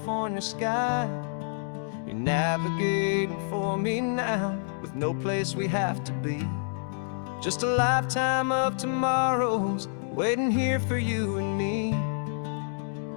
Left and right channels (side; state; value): right; silent; digital silence